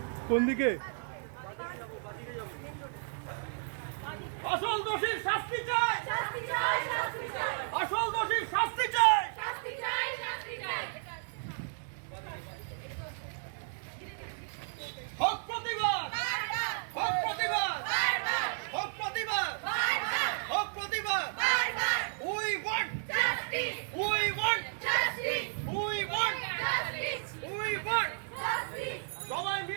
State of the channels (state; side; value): silent; left; digital silence